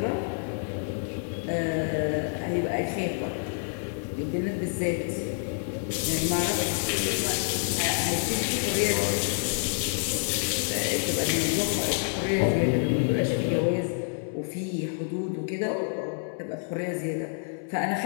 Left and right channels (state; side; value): silent; right; 59 dB below the other